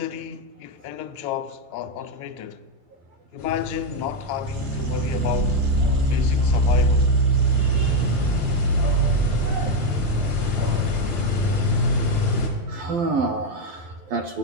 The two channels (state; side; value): late; left; 12 ms